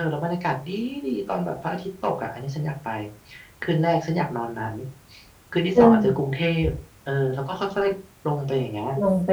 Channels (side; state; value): both; identical; correlation 1.00